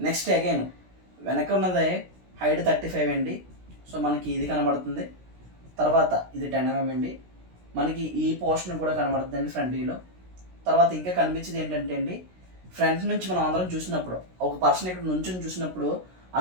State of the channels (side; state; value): left; late; 16 ms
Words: నెక్స్ట్ అగైన్ వెనక ఉన్నదే హైట్ 35 అండి. సో మనకి ఇది కనబడుతుంది. తర్వాత ఇది 10 mm అండి. మనకి ఈ పోర్షన్ కూడా కనబడుతుంది అండి ఫ్రంట్ వ్యూలో. తర్వాత ఇంకా కనిపించేది ఏంటంటే అండి ఫ్రంట్ నుంచి మనం అందరం చూసినప్పుడు ఒక పర్సన్ ఇక్కడ నుంచి చూసినప్పుడు